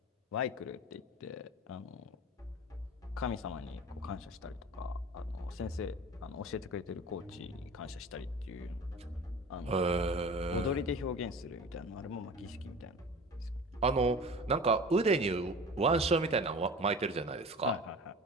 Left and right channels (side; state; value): both; normal; correlation 0.38